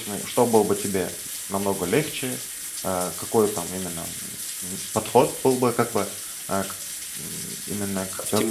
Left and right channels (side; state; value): both; identical; correlation 1.00